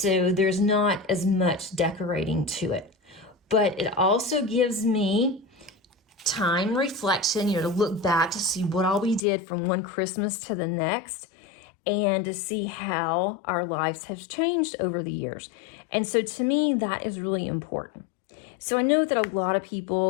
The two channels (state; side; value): drops out; right; at 9.2 s